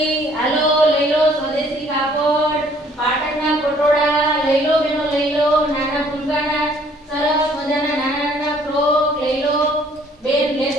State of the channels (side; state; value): both; normal; correlation 0.60